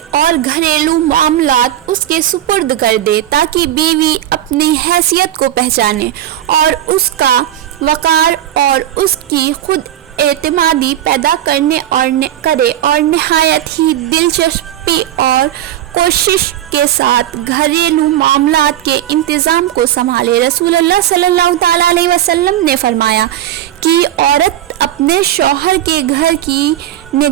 اور گھریلو معاملات اس کے سپرد کر دے، تاکہ بیوی اپنی حیثیت کو پہچانے اور اس کا وقار اور اس کی خود اعتمادی پیدا کرے اور نہایت ہی دلچسپی اور کوشش کے ساتھ گھریلو معاملات کے انتظام کو سنبھالے۔ رسول اللہ صلی اللہ تعالیٰ علیہ وسلم نے فرمایا کہ عورت اپنے شوہر کے گھر کی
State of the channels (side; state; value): left; quieter; 12.0 dB